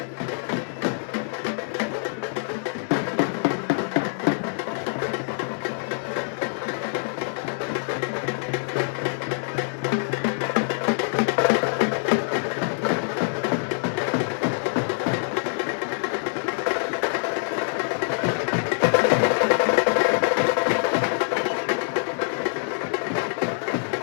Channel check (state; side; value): silent; right; digital silence